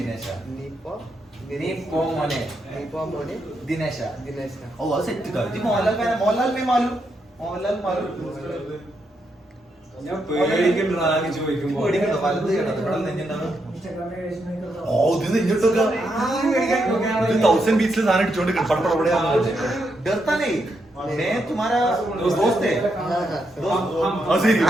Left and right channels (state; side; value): normal; both; correlation 0.81